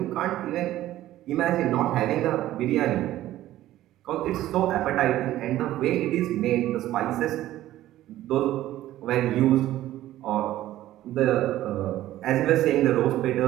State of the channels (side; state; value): left; quieter; 14.3 dB